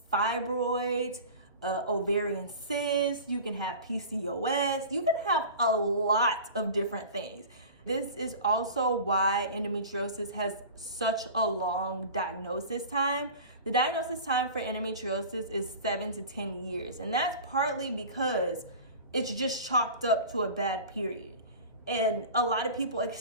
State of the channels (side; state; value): both; inverted; correlation -0.36